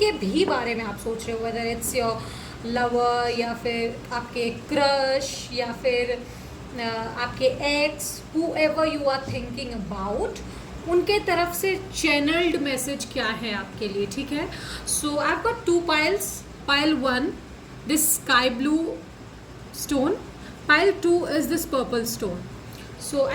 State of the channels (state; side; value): identical; both; correlation 1.00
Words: भी बारे में आप सोच रहे हो, वेदर इट्स योर लवर या फिर आपके क्रश या फिर आपके ex, whoever you are thinking about, उनके तरफ से चैनल्ड मैसेज क्या है आपके लिए। ठीक है। So I have got two piles. Pile one, this sky blue stone. Pile two is this purple stone. So